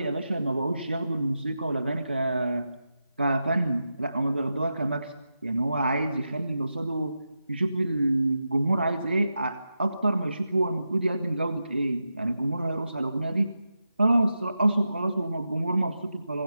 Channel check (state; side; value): inverted; both; correlation -0.89